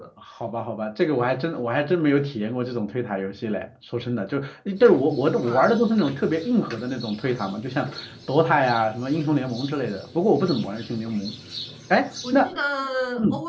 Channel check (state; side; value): identical; both; correlation 1.00